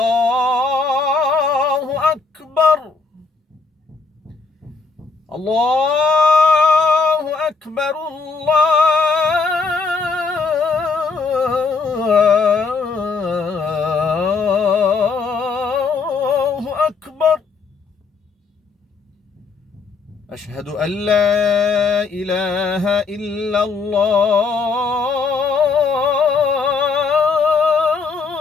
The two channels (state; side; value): quieter; right; 4.4 dB